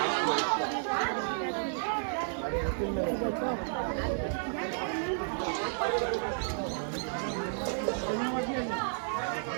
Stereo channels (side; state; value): left; silent; 56 dB below the other